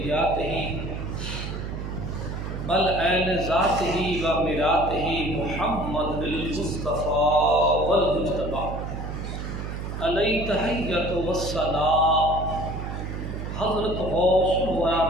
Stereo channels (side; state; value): right; noise; hum, 6 dB below the sound